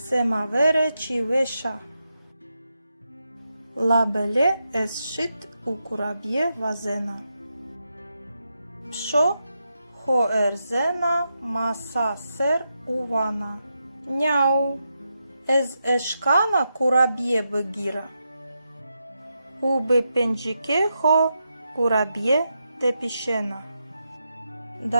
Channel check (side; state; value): both; inverted; correlation -0.85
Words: чівеша. Лабеле есшит у кураб'є вазена. Пшо хоерзена маса сер увана. Няу, ез ешкана кураб'є бегіра. Уби пенджіке хо кураб'є тепішена.